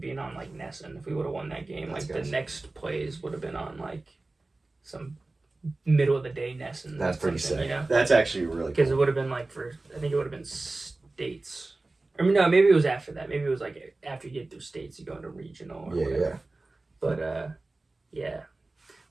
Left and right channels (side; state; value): left; quieter; 3.2 dB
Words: being on like NESN. If we would have won that game, like the next plays would have been on like some middle of the day NESN. That's pretty sick. You know? That's actually really cool. Because it would have been like I think it would have been states. I mean, no, maybe it was after that. Maybe it was like after you get through states, you go into regional or whatever. But